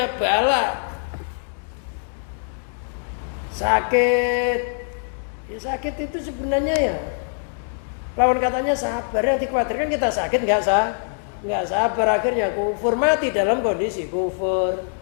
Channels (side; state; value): right; silent; digital silence